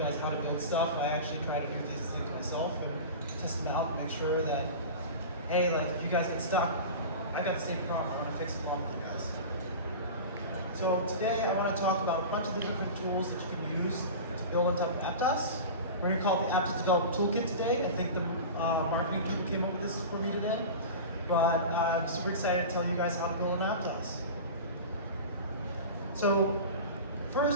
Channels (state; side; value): inverted; both; correlation -0.31